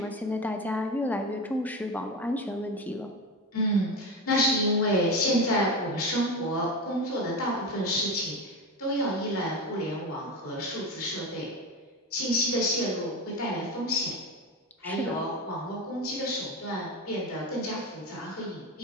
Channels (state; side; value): normal; both; correlation 0.22